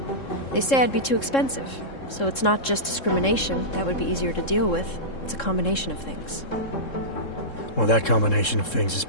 They say I'd be too expensive, so it's not just discrimination. That would be easier to deal with. It's a combination of things. Well, that combination of things is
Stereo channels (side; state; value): right; late; 3.7 ms